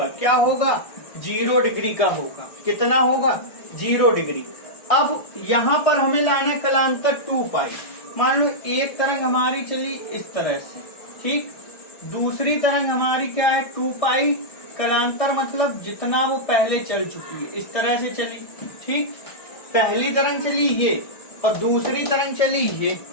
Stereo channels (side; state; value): right; late; 1.6 ms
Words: क्या होगा? 0 डिग्री का होगा। कितना होगा? 0 डिग्री। अब यहाँ पर हमें लाना कलांतर 2 पाई। मान लो एक तरंग हमारी चली इस तरह से, ठीक, दूसरी तरंग हमारी क्या है? 2 पाई। कलांतर मतलब जितना वो पहले चल चुकी है, इस तरह से चली, ठीक। पहली तरंग चली ये और दूसरी तरंग चली ये,